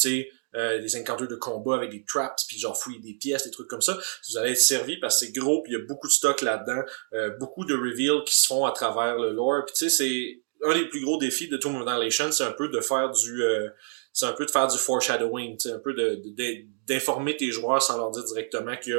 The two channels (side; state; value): left; silent; digital silence